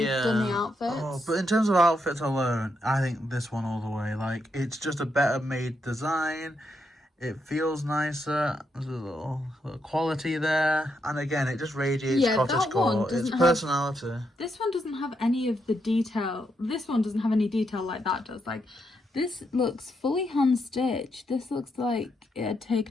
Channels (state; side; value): normal; both; correlation 0.80